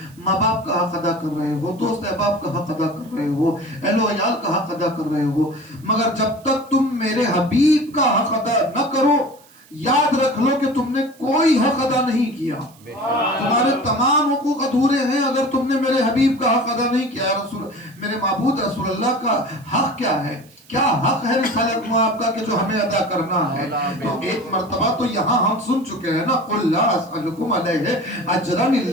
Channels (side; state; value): right; noise; hiss, 27 dB below the sound